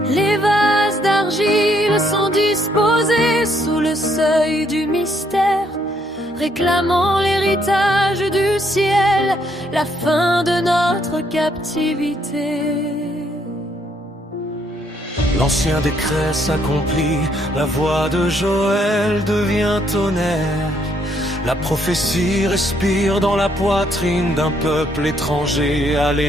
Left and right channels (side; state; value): both; normal; correlation 0.70